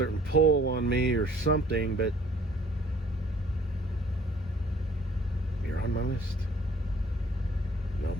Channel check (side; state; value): both; normal; correlation 0.57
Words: pull on me or something, but you're on my list. No